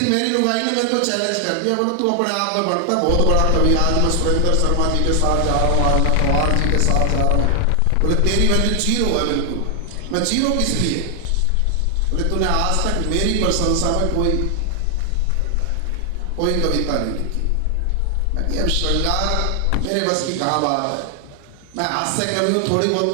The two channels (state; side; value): different; both; correlation 0.00